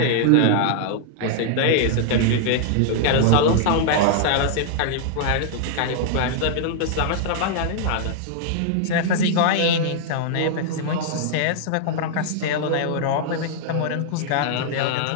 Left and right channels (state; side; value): different; both; correlation -0.01